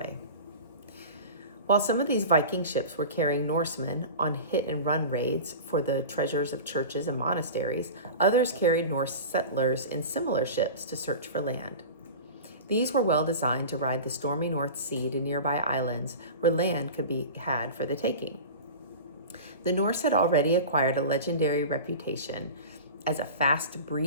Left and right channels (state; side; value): inverted; both; correlation -0.33